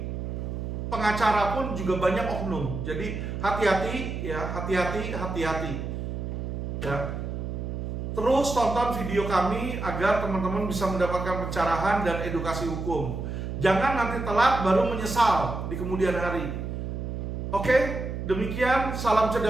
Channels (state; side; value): noise; right; hum, 5 dB below the sound